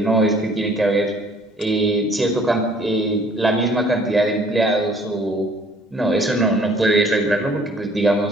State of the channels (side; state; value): both; normal; correlation 0.57